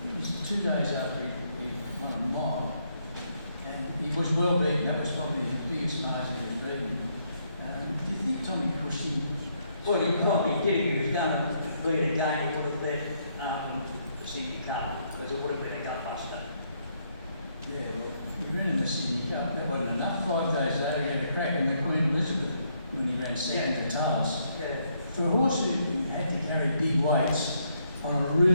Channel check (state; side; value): inverted; both; correlation -0.74